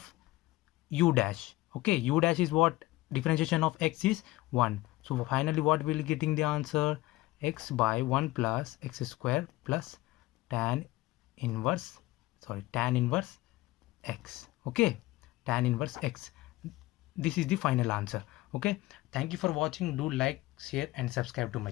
u dash. Okay, u dash is what? Differentiation of x is 1. So finally what will getting the answer? X by 1 plus x square plus tan inverse x. Okay, tan inverse x. This is the final answer. Okay, thank you for watching. Do like, share and subscribe to my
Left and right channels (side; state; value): right; quieter; 18.5 dB